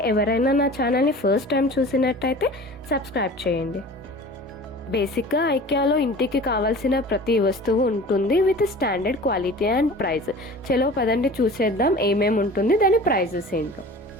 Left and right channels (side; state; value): both; normal; correlation 0.40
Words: ఎవరైనా నా ఛానల్ని ఫస్ట్ టైం చూసినట్టయితే సబ్స్క్రైబ్ చేయండి. బేసిక్గా ఐకియాలో ఇంటికి కావాల్సిన ప్రతి వస్తువు ఉంటుంది with standard quality and price. చలో పదండి చూసేద్దాం ఏమేమి ఉంటుంది, దాని ప్రైజెస్ ఏంటో.